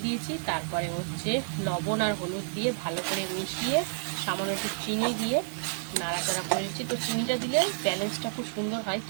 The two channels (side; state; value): left; silent; digital silence